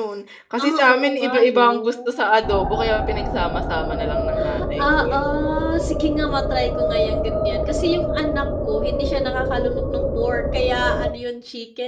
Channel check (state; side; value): identical; both; correlation 1.00